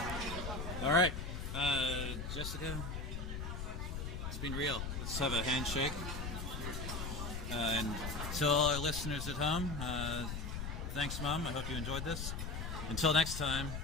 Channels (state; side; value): noise; left; rumble, 4 dB below the sound